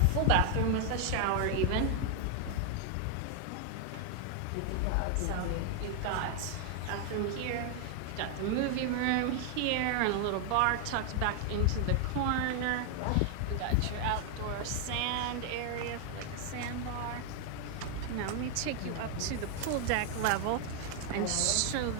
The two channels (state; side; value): different; both; correlation 0.00